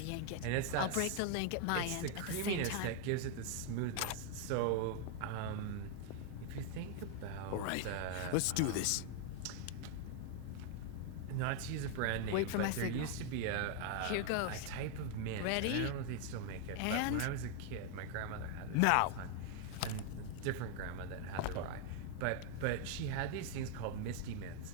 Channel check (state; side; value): different; both; correlation 0.00